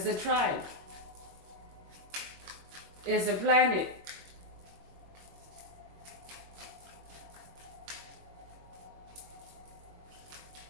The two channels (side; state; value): left; late; 22 ms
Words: a tribe, as a planet.